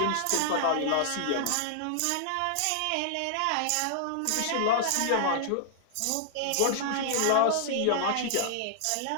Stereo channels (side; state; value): both; different; correlation -0.01